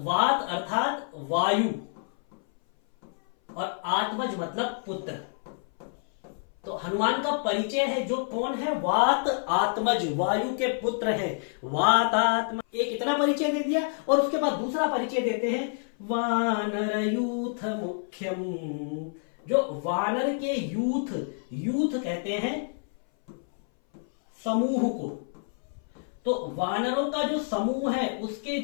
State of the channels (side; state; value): right; silent; 58 dB below the other